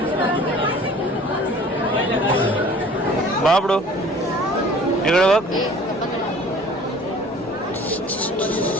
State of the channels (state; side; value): normal; both; correlation 0.48